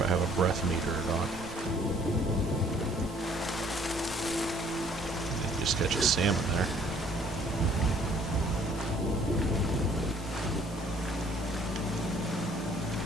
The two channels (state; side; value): normal; both; correlation 0.59